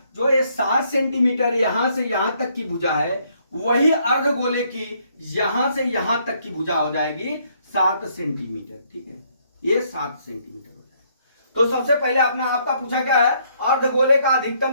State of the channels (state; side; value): inverted; both; correlation -0.69